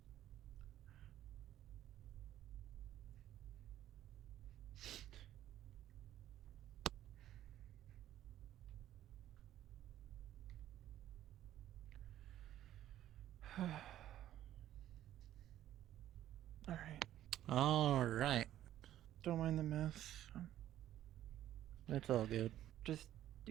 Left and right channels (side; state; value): left; quieter; 12.5 dB